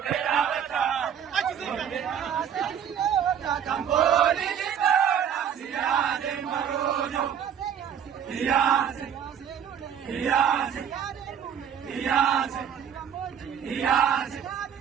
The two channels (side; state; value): left; quieter; 8.6 dB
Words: bata. Kamboli jitona siyade marojo. Iyase, iyase, iyase, iyase,